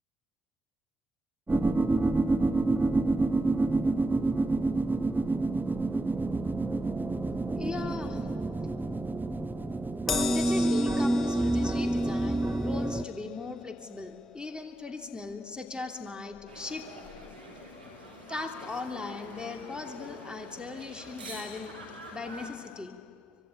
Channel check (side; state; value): both; normal; correlation 0.89